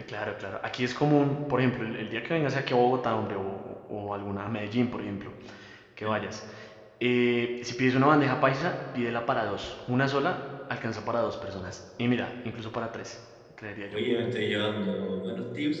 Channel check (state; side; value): identical; both; correlation 1.00